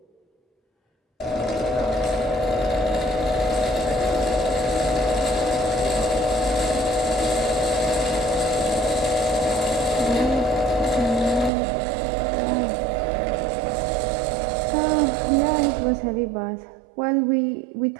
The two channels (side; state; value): left; drops out; at 11.5 s